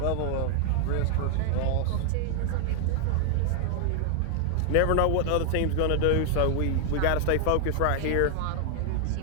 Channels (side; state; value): both; different; correlation 0.00